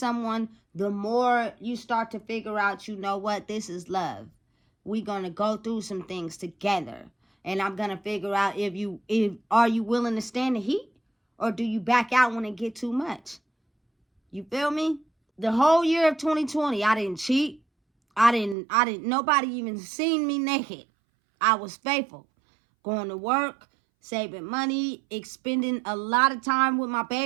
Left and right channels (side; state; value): left; drops out; at 18.6 s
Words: the more you start to figure out, you know what, this is love. we're going to go through some things together. And I'm going to figure out if are you willing to stand the heat, or do you back out when it get too much? You feel me? The whole year of 2020, I didn't cheat. Nobody even seen me naked. I was faithful. Going to work, saving money, expending a lot of time with my